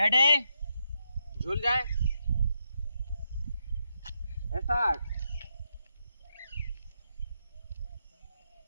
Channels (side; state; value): both; inverted; correlation -0.82